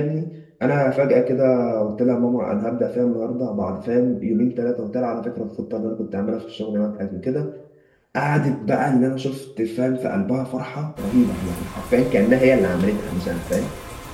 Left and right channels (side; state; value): both; identical; correlation 1.00